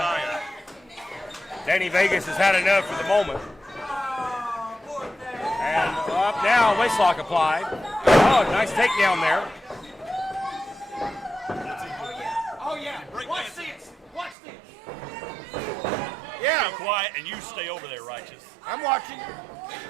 Danny Vegas has had enough for the moment. And up now, waistlock applied. Oh, nice takedown there. Oh, yeah. Watch this. Watch this. Yeah. Be quiet and you stay over there, Righteous. I'm watching.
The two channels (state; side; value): drops out; left; at 14.4 s